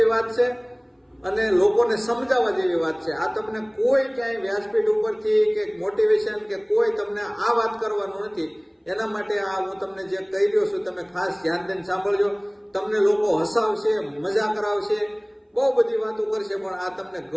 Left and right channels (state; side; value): identical; both; correlation 1.00